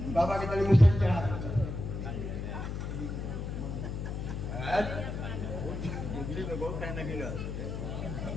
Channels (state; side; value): noise; left; hum, 5 dB below the sound